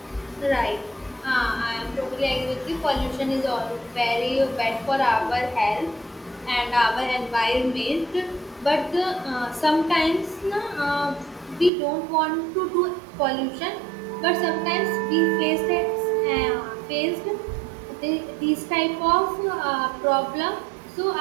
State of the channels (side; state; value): left; drops out; at 11.7 s